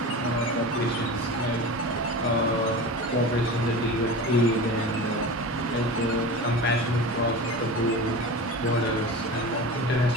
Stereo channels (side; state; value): both; normal; correlation 0.30